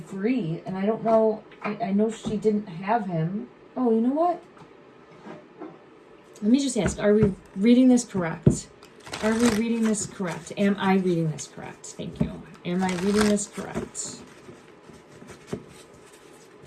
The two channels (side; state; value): both; identical; correlation 1.00